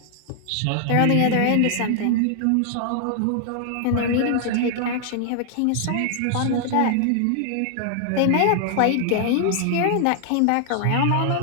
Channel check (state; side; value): different; both; correlation 0.00